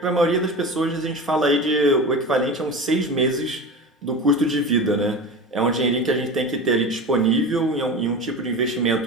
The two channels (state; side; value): normal; both; correlation 0.30